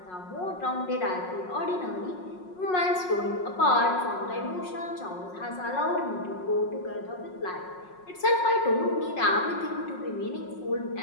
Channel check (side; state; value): right; late; 5.5 ms